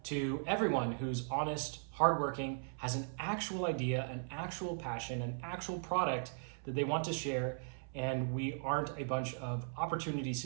to everyone who's honest, hardworking, has an actual idea, an actual passion, an actual product that they want to share. And we aren't a bunch of opportunity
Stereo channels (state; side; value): silent; left; 52 dB below the other